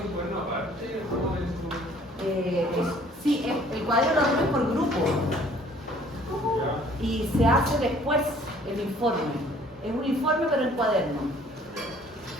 un cuaderno aparte? ¿Cómo es tu...? Sí, el cuaderno lo hacemos por grupo. Y se hace después el informe. Es un informe pero en cuaderno.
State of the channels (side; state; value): both; normal; correlation 0.56